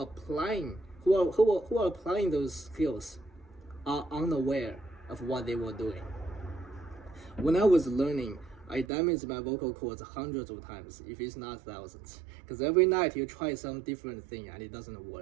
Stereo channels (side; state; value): left; drops out; at 8.9 s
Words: applying those skills are unaware of what they were doing. When I was learning, I damaged my vocal cords hundreds of times, if it's not thousands. Because every night you try some different thing and it doesn't